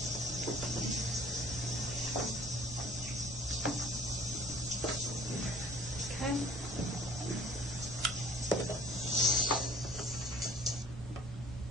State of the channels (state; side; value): normal; both; correlation 0.51